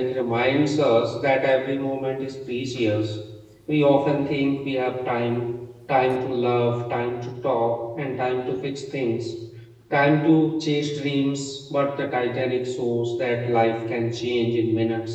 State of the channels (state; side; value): identical; both; correlation 1.00